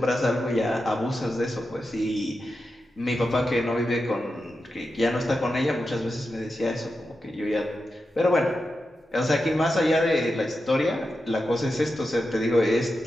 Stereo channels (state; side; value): normal; both; correlation 0.89